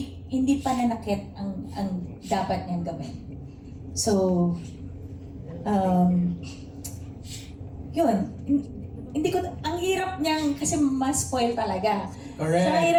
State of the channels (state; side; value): identical; both; correlation 1.00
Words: hindi pananakit ang dapat niyang gawin. So, yun. Hindi ko, ang hirap niyang, kasi ma-spoil talaga. Correct. So, ang